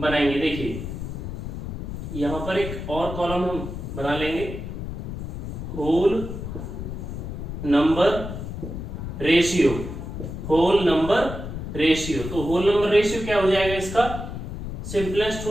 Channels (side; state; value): left; noise; rumble, 7 dB below the sound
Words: देखिए यहां पर एक और कॉलम हम बना लेंगे, whole number ratio, whole number ratio. तो होल नंबर रेशियो क्या हो जाएगा इसका, सिंपलेस्ट